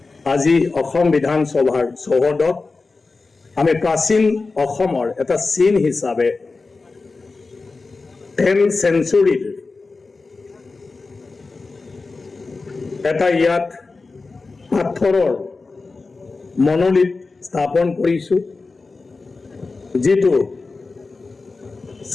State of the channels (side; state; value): right; quieter; 3.9 dB